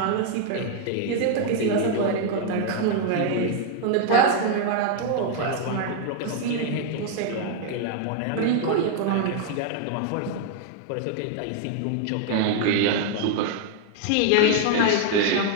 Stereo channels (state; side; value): different; both; correlation 0.00